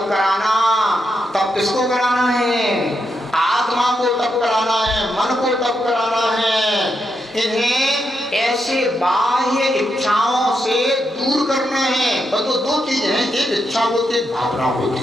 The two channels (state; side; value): normal; both; correlation 0.83